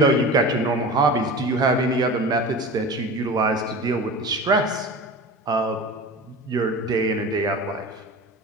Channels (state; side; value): normal; both; correlation 0.34